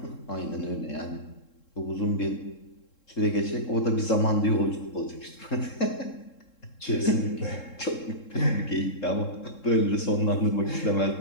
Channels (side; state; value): right; late; 3.7 ms